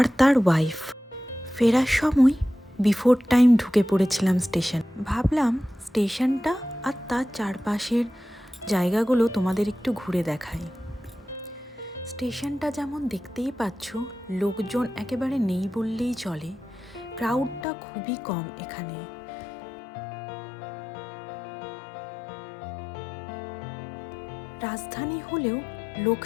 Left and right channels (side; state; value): right; drops out; at 17.7 s